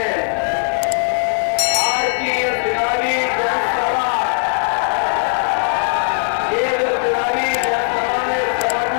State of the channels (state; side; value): silent; right; 61 dB below the other